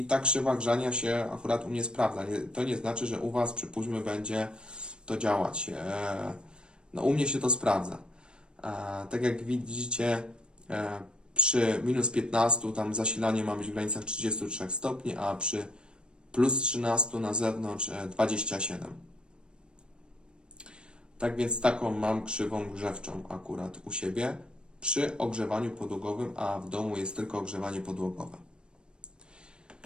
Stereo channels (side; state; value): left; late; 0.053 ms